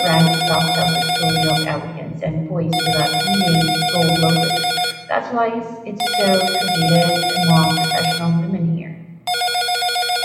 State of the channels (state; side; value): identical; both; correlation 1.00